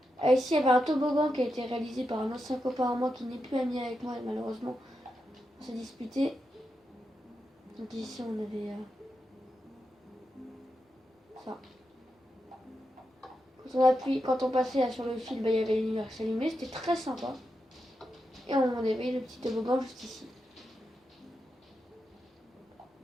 Ici, il y avait un toboggan qui a été réalisé par un ancien copain à moi qui n'est plus ami avec moi, malheureusement. On s'est disputé. Donc ici, on avait ça. Quand on passait là, sur le fil, bah, il y avait une lumière qui s'allumait, c'était très sympa. Et on avait le petit toboggan juste ici.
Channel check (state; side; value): normal; both; correlation 0.87